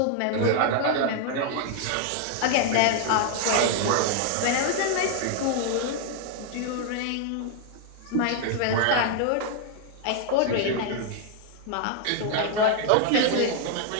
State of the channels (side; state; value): both; different; correlation 0.00